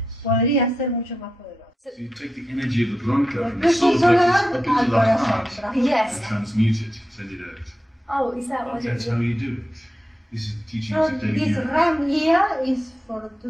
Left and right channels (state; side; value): normal; both; correlation 0.88